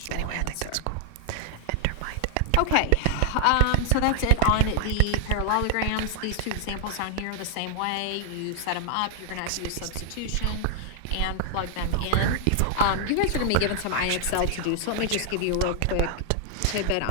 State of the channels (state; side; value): different; both; correlation 0.00